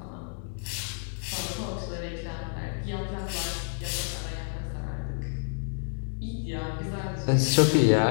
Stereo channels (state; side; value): silent; right; digital silence